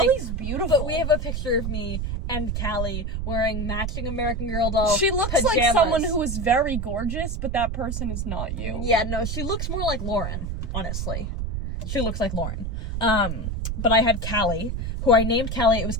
beautiful. But we have a picture of me and Callie wearing matching American Girl doll She looks pajamas. like someone who is very gorgeous, but that person is not you. Yeah, no, she looks more like Lauren, honestly. She looks like Lauren. But I had Callie, who I named Callie. It was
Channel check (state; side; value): noise; right; rumble, 3 dB below the sound